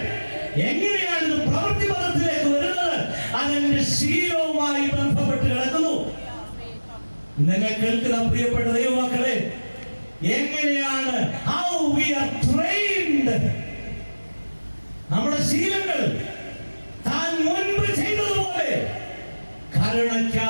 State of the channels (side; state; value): both; inverted; correlation -1.00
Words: എങ്ങനെയാണ് ഇത് പ്രവൃത്തിപഥത്തിലേക്ക് വരുന്നത്? അതെന്റെ ശീലവുമായി ബന്ധപ്പെട്ട് കിടക്കുന്നു. നിങ്ങൾ കേൾക്കുന്ന പ്രിയപ്പെട്ട ദൈവമക്കളെ, എങ്ങനെയാണ് how we are trained? നമ്മുടെ ശീലങ്ങൾ താൻ മുൻപ് ചെയ്തതുപോലെ